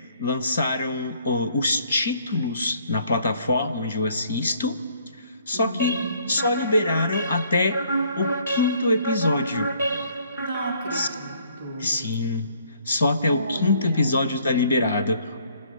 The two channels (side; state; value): both; inverted; correlation -0.62